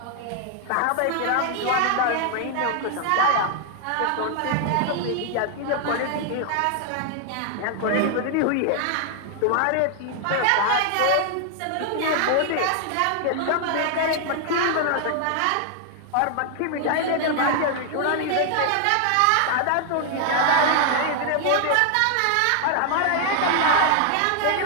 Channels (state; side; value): different; both; correlation 0.00